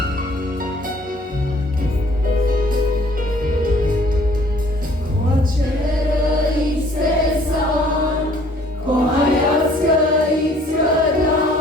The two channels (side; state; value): both; normal; correlation 0.58